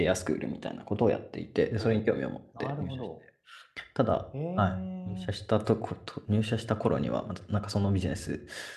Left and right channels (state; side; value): identical; both; correlation 1.00